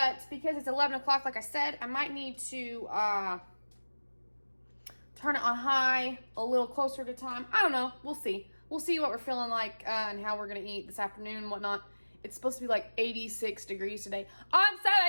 because it's 11 o'clock, like I said, I might need to turn it on high a little closer to time. I don't know. We'll see. We'll see what we're feeling like and how we're going to eat this afternoon and whatnot. It's supposed to be like 86 degrees today. I'm so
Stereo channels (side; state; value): both; inverted; correlation -1.00